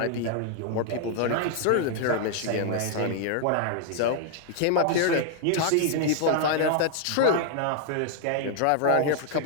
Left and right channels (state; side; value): different; both; correlation 0.00